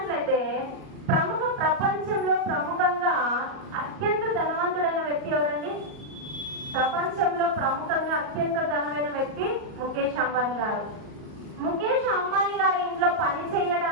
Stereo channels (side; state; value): left; late; 38 ms